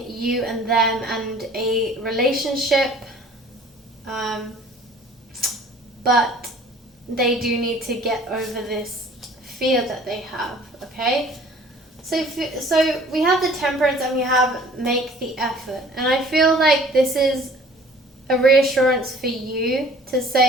you and them and a relationship. But they do need to get over this fear that they have, okay? So we have the Temperance, and we have make the effort. And I feel like this is a reassurance for you to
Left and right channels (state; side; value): normal; both; correlation 0.51